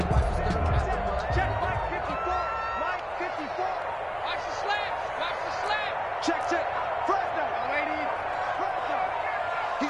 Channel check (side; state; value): both; identical; correlation 1.00